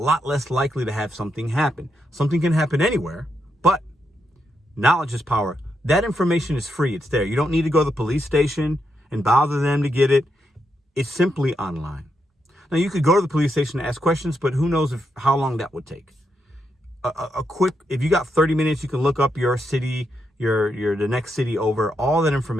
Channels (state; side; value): normal; both; correlation 0.82